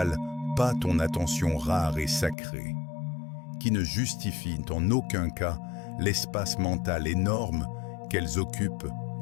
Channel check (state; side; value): drops out; right; at 2.4 s